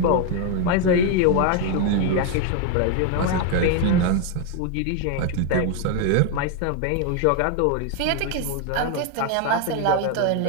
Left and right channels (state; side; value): different; both; correlation 0.01